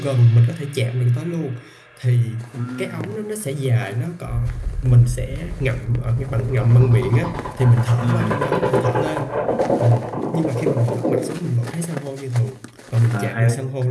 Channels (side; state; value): both; identical; correlation 1.00